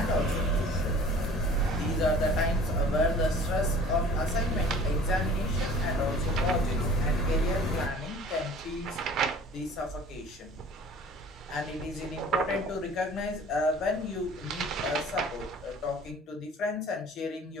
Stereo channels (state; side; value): normal; both; correlation 0.46